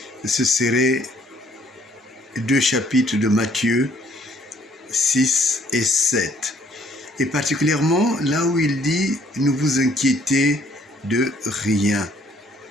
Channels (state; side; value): normal; both; correlation 0.63